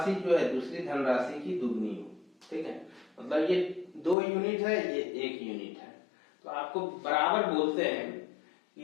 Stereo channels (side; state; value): right; drops out; at 4.2 s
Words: जो है दूसरी धनराशि की दुगनी हो, ठीक है। मतलब ये 2 यूनिट है, ये 1 यूनिट है, तो आपको बराबर बोलते हैं